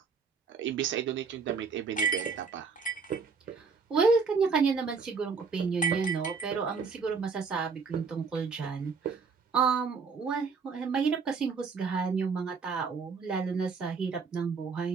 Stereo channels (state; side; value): quieter; left; 5.1 dB